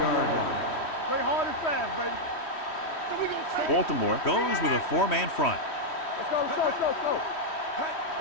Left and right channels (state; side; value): late; right; 3.1 ms